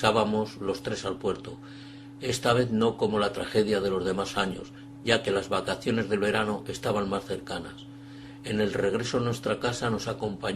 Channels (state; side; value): identical; both; correlation 1.00